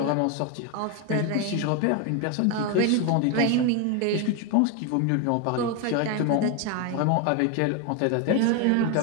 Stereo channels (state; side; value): different; both; correlation 0.02